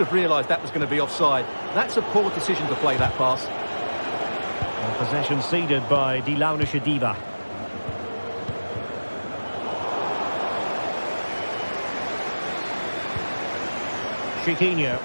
realised that was going to be offside. That's a poor decision to play that pass. And possession ceded by Die Launische Diva. Chiquinho.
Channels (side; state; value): both; inverted; correlation -1.00